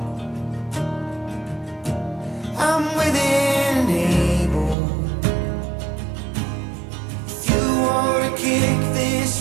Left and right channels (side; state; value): left; drops out; at 4.8 s